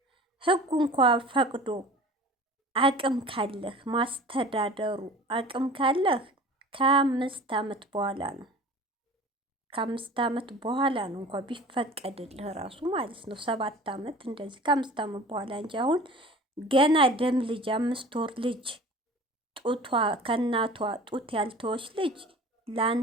ህጉ እንኳ ፈቅዶ አቅም ካለህ ማስተዳደሩ አቅም ካለህ ከ5 ዓመት በኋላ ነው። ከ5 ዓመት በኋላ ነው እንኳ ቢፈቀድልህ ራሱ ማለት ነው። 7 ዓመት እንደዚህ ከ5 ዓመት በኋላ እንጂ አሁን ገና ደም ልጅ 5 ወር ልጅ ጡቷ ከእናቷ ጡት ያልተወች ልጅ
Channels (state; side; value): normal; both; correlation 0.41